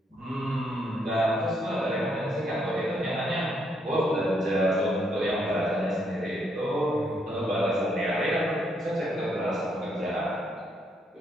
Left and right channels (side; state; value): both; normal; correlation 0.74